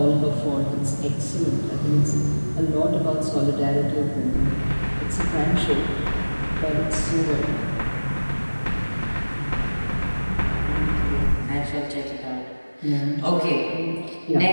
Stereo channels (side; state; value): both; inverted; correlation -1.00